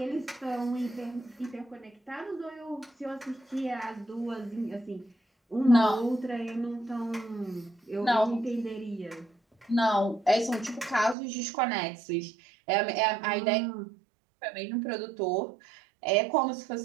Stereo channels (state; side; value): drops out; left; at 11.2 s